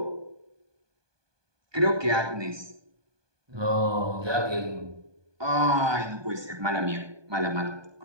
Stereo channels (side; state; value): left; late; 1.2 ms